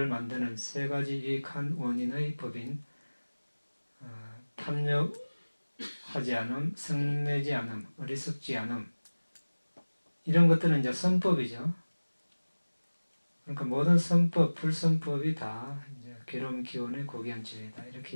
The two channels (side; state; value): both; inverted; correlation -1.00